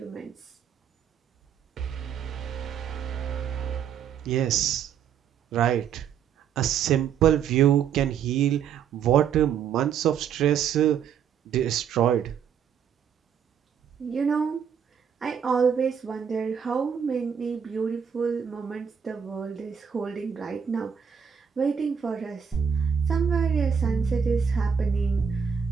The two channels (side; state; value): left; quieter; 7.6 dB